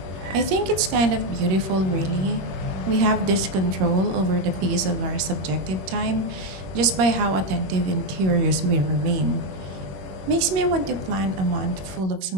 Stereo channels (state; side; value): late; left; 21 ms